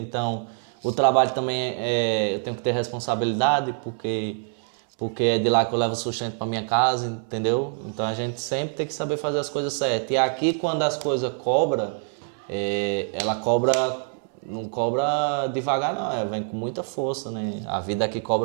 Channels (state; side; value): silent; left; 62 dB below the other